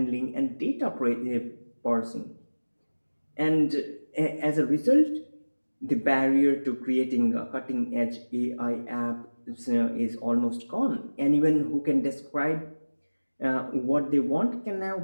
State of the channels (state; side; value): inverted; both; correlation -1.00